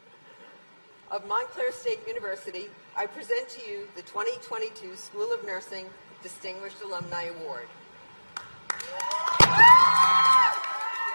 of Montclair State University, I present to you the 2022 School of Nursing Distinguished Alumni Award.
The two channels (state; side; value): inverted; both; correlation -1.00